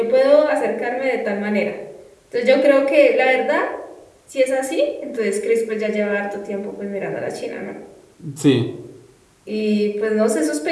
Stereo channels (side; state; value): both; identical; correlation 1.00